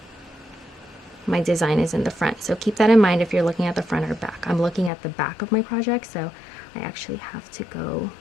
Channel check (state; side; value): drops out; right; at 4.9 s